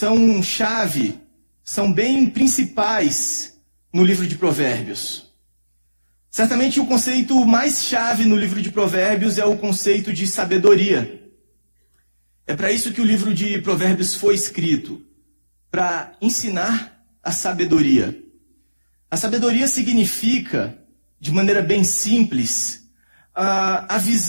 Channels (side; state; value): both; inverted; correlation -1.00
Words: chave, são bem principais no livro de Provérbios. Certamente o conceito mais chave no livro de Provérbios é o conceito de sabedoria. É para isso que o livro de Provérbios foi escrito, para ensinar a sabedoria. A sabedoria significa, de maneira bem simples, a